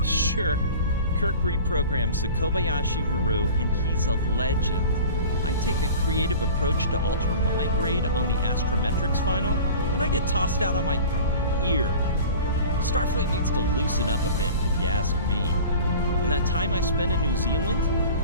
Sure, Kirk reprograms the Kobayashi Maru, and he's a legend. I take a creative approach to alter my grade on the astrometrics final, and I get tossed out on my ear. Starfleet needs to loosen up a bit, if you ask me. And that time I spent in New Zealand?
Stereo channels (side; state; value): both; inverted; correlation -0.40